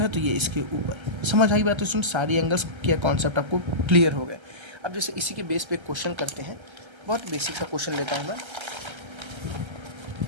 है तो ये इसके ऊपर। समझ आई बात तो सुन, सारी एंगल्स क्या कॉन्सेप्ट आपको क्लियर हो गए। अब जैसे इसी के बेस पे एक क्वेश्चन करते हैं, बहुत बेसिक सा क्वेश्चन लेता हूँ मैं।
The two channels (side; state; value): left; late; 1.3 ms